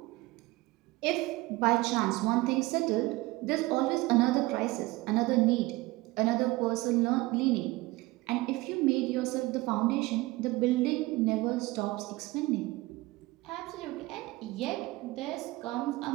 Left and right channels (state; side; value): quieter; left; 20.6 dB